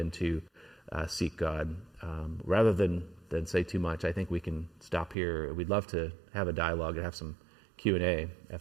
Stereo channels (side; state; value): left; drops out; at 5.2 s